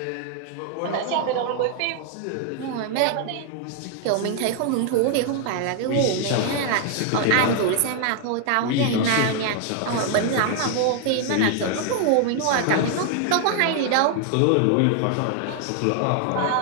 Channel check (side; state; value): both; different; correlation 0.00